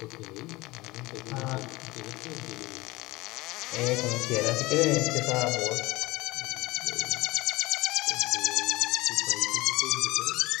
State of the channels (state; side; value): quieter; right; 21.1 dB